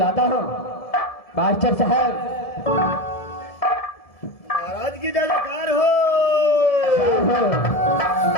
हूँ। मास्टर साहब महाराज की जयकार हो।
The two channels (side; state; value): right; late; 1.7 ms